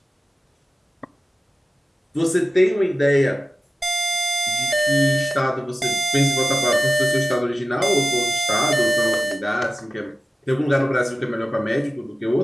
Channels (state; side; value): normal; both; correlation 0.95